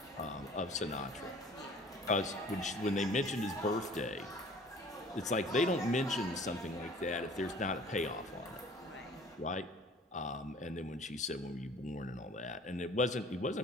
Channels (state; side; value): normal; both; correlation 0.50